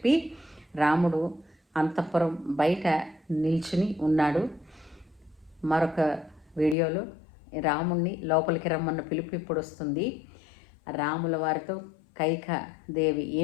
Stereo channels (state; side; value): drops out; right; at 6.8 s